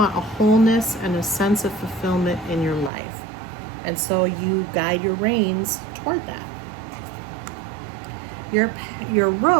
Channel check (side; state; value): left; drops out; at 2.9 s